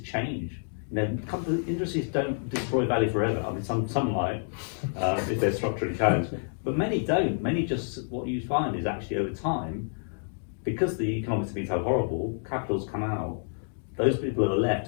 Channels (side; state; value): right; silent; digital silence